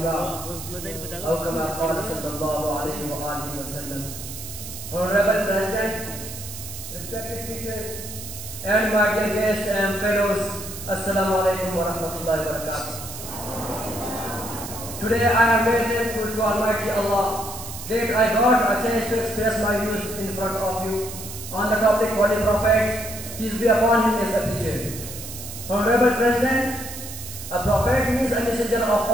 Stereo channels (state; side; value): noise; right; hiss, 10 dB below the sound